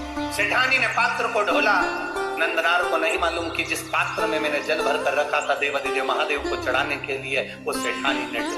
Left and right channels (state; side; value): identical; both; correlation 1.00